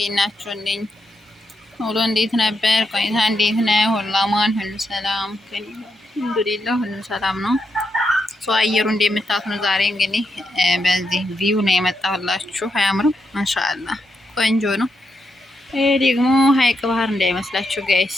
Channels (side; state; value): both; normal; correlation 0.83